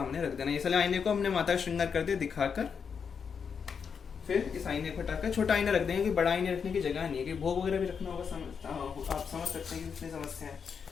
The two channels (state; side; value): quieter; right; 6.4 dB